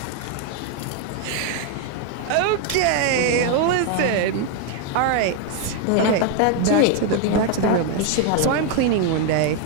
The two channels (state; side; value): different; both; correlation 0.01